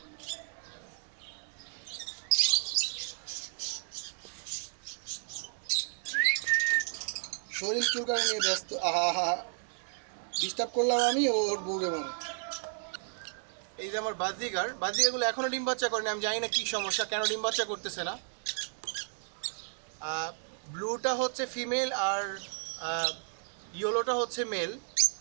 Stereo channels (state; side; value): silent; left; 56 dB below the other